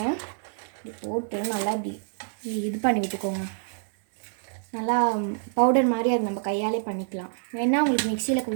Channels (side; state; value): left; silent; digital silence